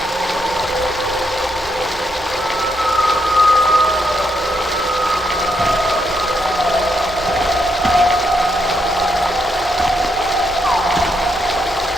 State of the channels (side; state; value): both; normal; correlation 0.78